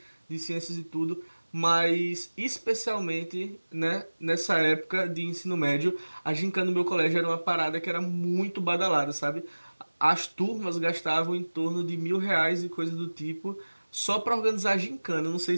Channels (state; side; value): inverted; both; correlation -1.00